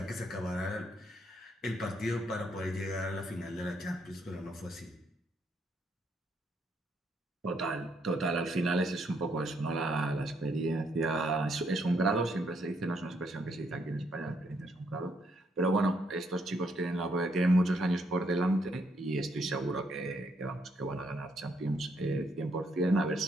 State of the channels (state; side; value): normal; both; correlation 0.74